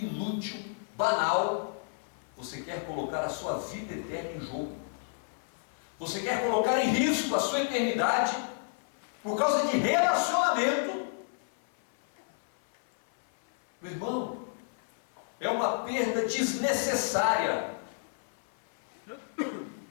banal, você quer colocar a sua vida eterna em jogo? Você quer colocar em risco a sua eternidade por causa de relacionamento? Meu irmão, é uma perda desnecessária,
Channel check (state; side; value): silent; right; 57 dB below the other